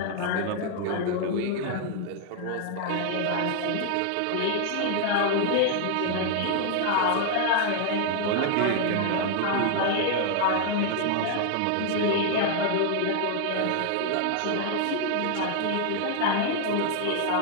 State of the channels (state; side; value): different; both; correlation 0.00